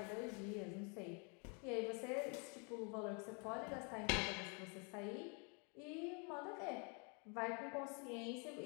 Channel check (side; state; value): right; quieter; 35.3 dB